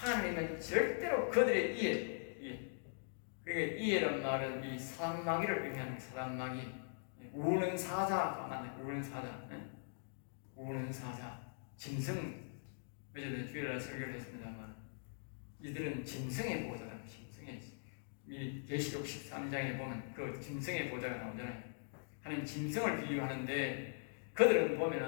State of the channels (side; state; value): right; silent; digital silence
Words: 절대로 그들에 의해, 그러니까 이해란 말은 이 사단마귀를 의미하는 사단마귀, 우는 사자가 맞네. 우는 사자, 우는 사자, 짐승. 어제는 주일날 설교를 했습니다만 이들은 짐승의 보좌다. 짐승의, 이 계시록 13장에 보면 그 짐승의 보좌가 나오잖아요. 하나님 짐승을 비유하는데 그들은